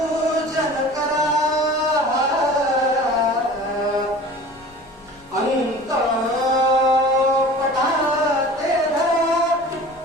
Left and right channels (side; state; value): left; noise; rumble, 27 dB below the sound